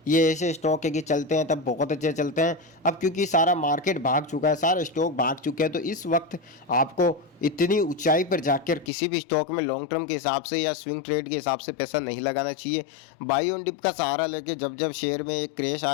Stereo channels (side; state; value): right; drops out; at 8.9 s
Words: ये ऐसे स्टॉक है कि चलते हैं तब बहुत अच्छे चलते हैं। अब क्योंकि सारा मार्केट भाग चुका है, सारे स्टॉक भाग चुके हैं, तो इस वक्त आपको इतनी ऊंचाई पर जाकर किसी भी स्टॉक में लॉन्ग टर्म के हिसाब से या स्विंग ट्रेड के हिसाब से पैसा नहीं लगाना चाहिए। बाई ऑन डिप का सहारा लेके जब जब शेयर में एक क्रैश